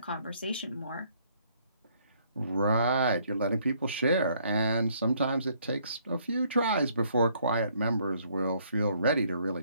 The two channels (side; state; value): both; inverted; correlation -0.67